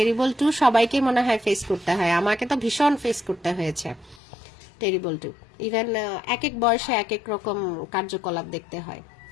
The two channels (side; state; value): right; drops out; at 4.2 s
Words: 2 সবাইকে মনে হয় ফেস করতে হয়, আমাকে তো ভীষণ ফেস করতে হয়েছে টেরিবল 2। ইভেন এক এক বয়সে এক এক রকম কার্যকলাপ দেখতে হয়।